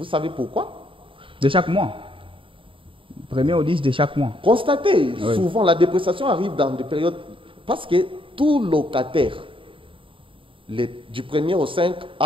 savez pourquoi? De chaque mois. 1er au 10 de chaque mois. Constatez, oui. Souvent la dépréciation arrive dans des périodes, parce que tout locataire, du 1er au 5,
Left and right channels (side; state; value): left; late; 0.25 ms